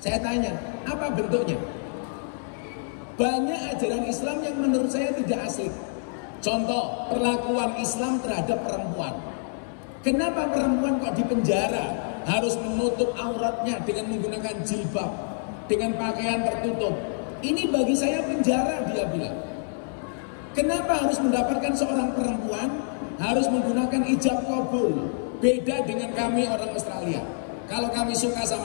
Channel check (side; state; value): right; silent; 60 dB below the other